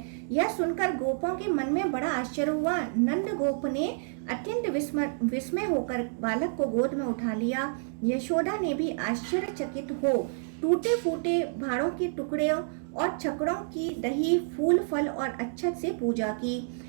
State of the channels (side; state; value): left; silent; digital silence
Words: यह सुनकर गोपों के मन में बड़ा आश्चर्य हुआ। नंद गोप ने अत्यंत विस्मय होकर बालक को गोद में उठा लिया। यशोदा ने भी आश्चर्यचकित हो टूटे फूटे भाड़ों के टुकड़े और छकड़ों की दही, फूल, फल और अच्छत से पूजा की।